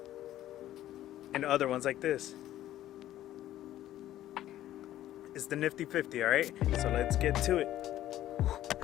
and other ones like this. It's the NIFTY 50, all right? So let's get to it.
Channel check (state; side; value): quieter; right; 13.2 dB